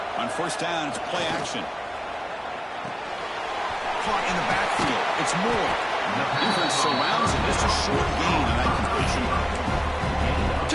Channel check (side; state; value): both; identical; correlation 1.00